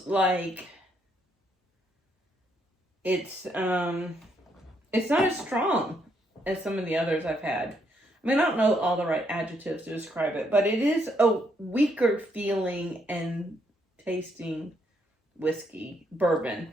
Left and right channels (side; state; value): both; normal; correlation 0.74